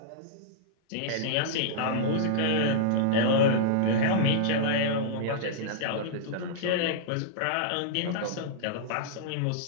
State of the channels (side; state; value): both; different; correlation -0.03